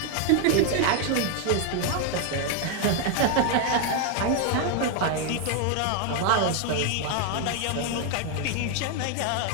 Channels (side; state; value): both; different; correlation 0.01